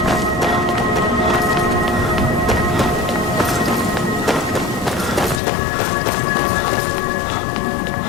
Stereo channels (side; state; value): right; drops out; at 5.4 s